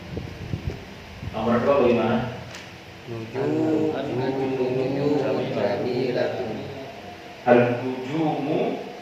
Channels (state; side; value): identical; both; correlation 1.00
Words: Nomor 2 bagaimana? Al-nujumu